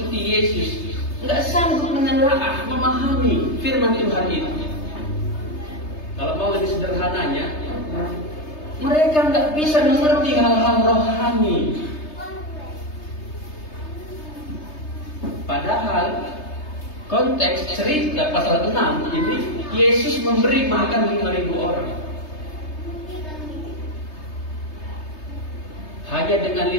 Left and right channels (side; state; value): right; late; 3.3 ms